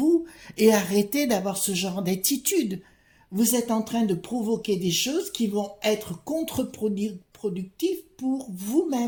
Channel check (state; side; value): identical; both; correlation 1.00